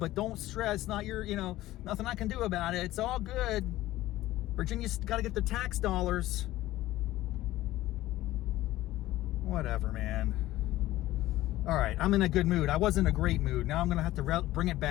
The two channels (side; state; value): right; quieter; 15.9 dB